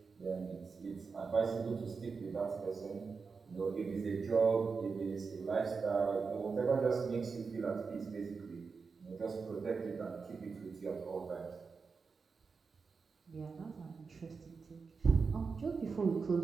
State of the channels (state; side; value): quieter; left; 5.0 dB